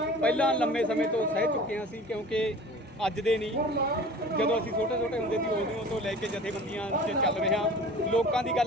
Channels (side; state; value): both; normal; correlation 0.42